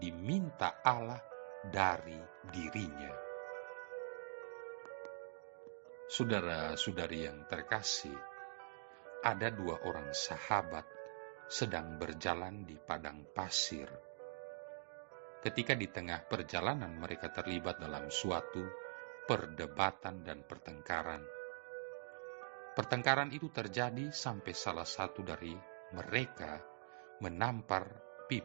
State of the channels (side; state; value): left; silent; digital silence